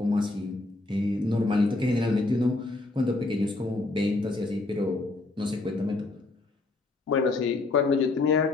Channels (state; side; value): quieter; right; 3.1 dB